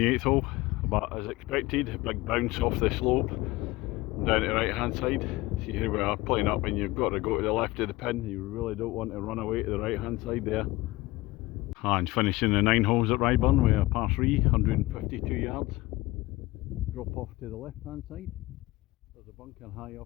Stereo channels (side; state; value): right; quieter; 19.6 dB